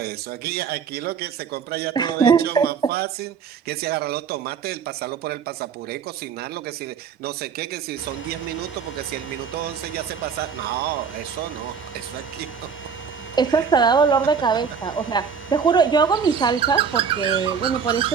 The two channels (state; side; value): quieter; left; 6.4 dB